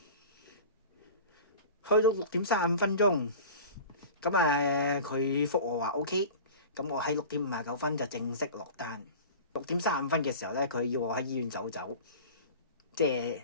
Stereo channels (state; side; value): inverted; both; correlation -0.37